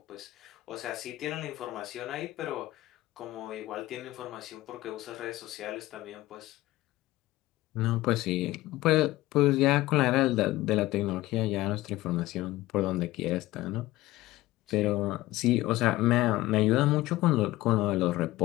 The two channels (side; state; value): right; quieter; 17.6 dB